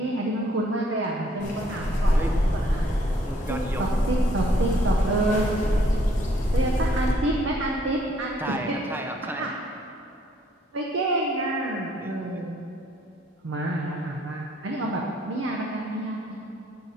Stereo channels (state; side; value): normal; both; correlation 0.64